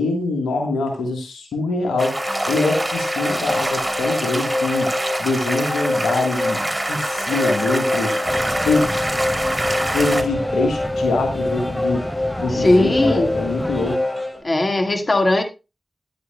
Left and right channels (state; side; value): normal; both; correlation 0.91